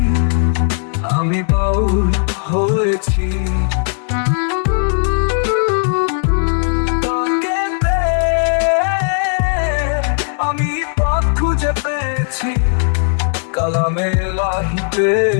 আমি বাউল হয়েছি। তাকে পেয়ে আমি পথ খুঁজে পেয়েছি, কালামে লাহি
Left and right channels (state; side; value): silent; right; digital silence